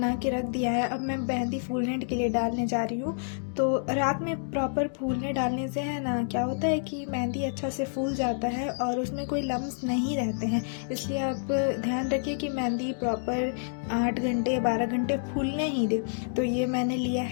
के रख दिया है। अब मैं मेहंदी फूलने के लिए डालने जा रही हूँ। तो रात में प्रॉपर फूलने डालने से है ना, क्या होता है कि मेहंदी अच्छा से फूल जाता है और उसमें कोई लम्स नहीं रहते हैं। इसलिए आप ध्यान रखिए कि मेहंदी प्रॉपर 8 घंटे 12 घंटे फूलने ही दे। तो ये मैंने लिया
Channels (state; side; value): silent; right; digital silence